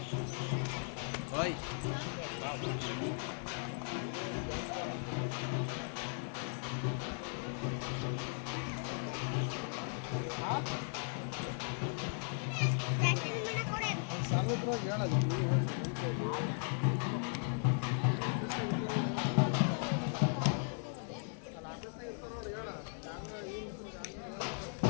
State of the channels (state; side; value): silent; right; 53 dB below the other